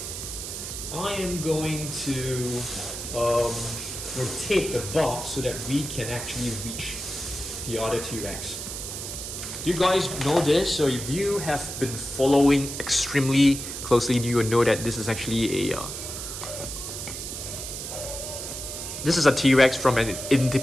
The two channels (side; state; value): right; noise; hiss, 7 dB below the sound